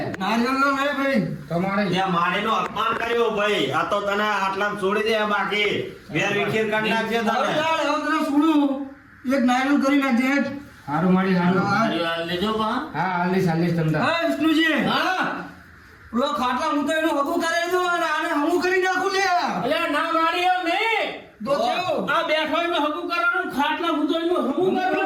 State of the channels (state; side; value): identical; both; correlation 1.00